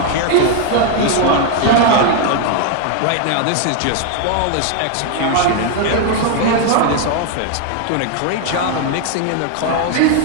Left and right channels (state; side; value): different; both; correlation 0.00